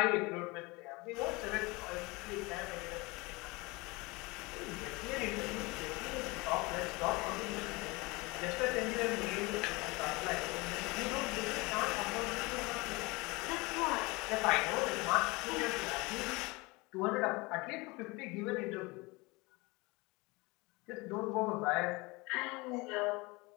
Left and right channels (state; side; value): quieter; right; 24.7 dB